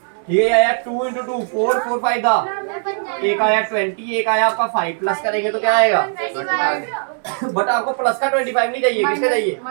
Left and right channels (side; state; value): left; silent; 65 dB below the other